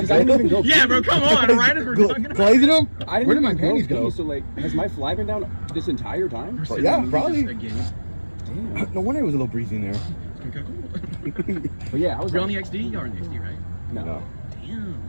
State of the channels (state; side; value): inverted; both; correlation -1.00